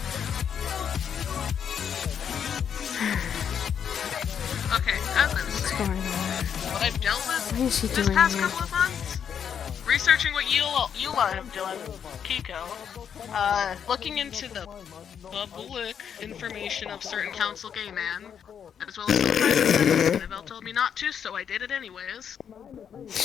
Okay, as I was What's saying, going on? what I've dealt with What is he this doing past here? couple of months, researching what you have done, Kiko, looking into the public information of certain council gay man, as well as some private sex. Annabelle told me not to, so I did it anyways.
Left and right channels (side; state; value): right; quieter; 8.0 dB